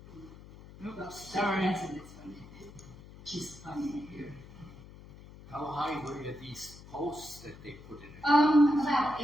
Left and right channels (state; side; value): noise; left; hum, 18 dB below the sound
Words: upstairs. Sorry. That's a good one. She's funny here. How high were these posts that they put in? About